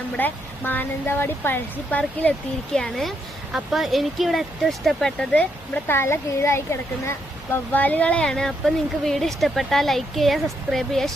നമ്മുടെ മാനന്തവാടി പഴശ്ശി പാർക്കിൽ എത്തിയിരിക്കുകയാണ്. അപ്പോൾ എനിക്കിവിടെ ഏറ്റവും ഇഷ്ടപ്പെട്ടത് നമ്മുടെ തല കീഴായി കിടക്കുന്ന വവ്വാലുകളെയാണ്. അപ്പോൾ നിങ്ങൾക്ക് വീഡിയോ ഇഷ്ടപ്പെട്ടാൽ ലൈക്ക് ചെയ്യുക, സബ്സ്ക്രൈബ് ചെയ്യുക,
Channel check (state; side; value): normal; both; correlation 0.77